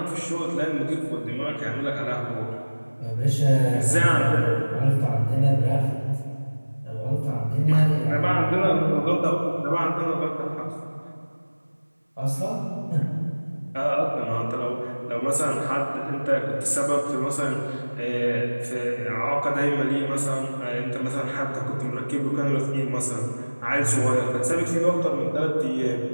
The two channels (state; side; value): inverted; both; correlation -1.00